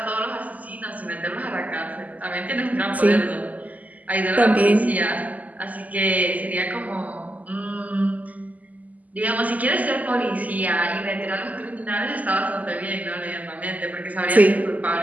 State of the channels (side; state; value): left; late; 0.077 ms